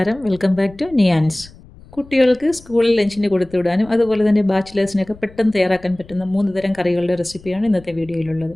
Welcome back to Niyans. കുട്ടികൾക്ക് സ്കൂളിൽ ലഞ്ചിന് കൊടുത്തുവിടാനും അതുപോലെ തന്നെ ബാച്ചിലേഴ്സിനൊക്കെ പെട്ടെന്ന് തയ്യാറാക്കാൻ പറ്റുന്ന 3 തരം കറികളുടെ റെസിപ്പിയാണ് ഇന്നത്തെ വീഡിയോയിലുള്ളത്.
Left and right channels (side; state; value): left; noise; rumble, 22 dB below the sound